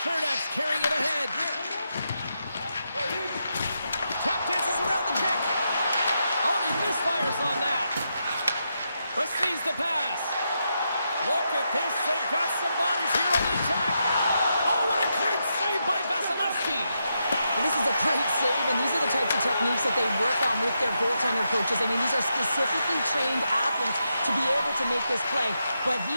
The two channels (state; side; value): inverted; both; correlation -0.84